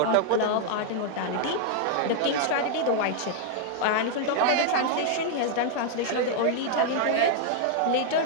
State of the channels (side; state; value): both; different; correlation 0.00